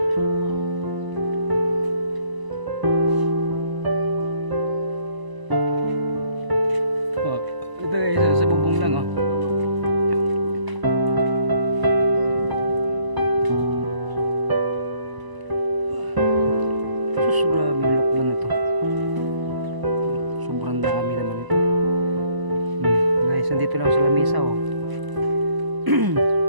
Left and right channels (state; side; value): late; left; 1.0 ms